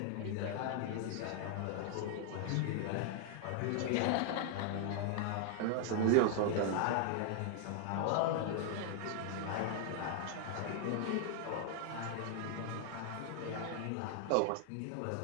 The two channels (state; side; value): different; both; correlation 0.00